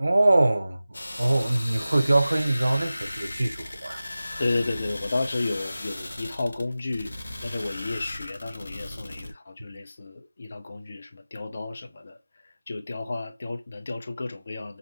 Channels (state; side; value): inverted; both; correlation -0.96